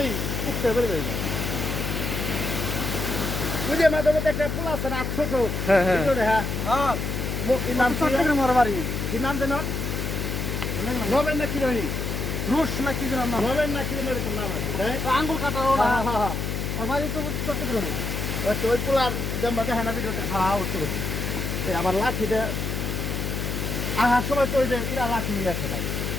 উঠতে পারবে। বুঝে মাঝে মধ্যে একটা পোলা আছে না, ছোট নবেন না কি রহি রুশ না কি নাম, নবেন না কি এরকম নাম আছে, আঙ্গুল কাটার চট্টগ্রামে ওই পোলার জন্ম দেখে না ভিডিওতে খাওয়া উঠতে করছে। আমার লাঠিটা আহার সময় তো ওই যে এরা লাঠি নিয়ে আসে ভাই,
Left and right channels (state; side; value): noise; left; hum, 2 dB below the sound